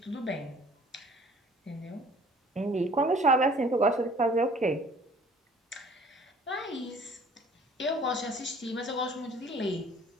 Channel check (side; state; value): both; normal; correlation 0.52